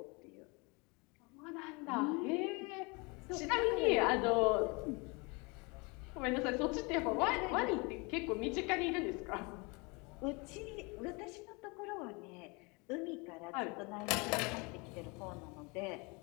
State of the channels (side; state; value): right; quieter; 28.7 dB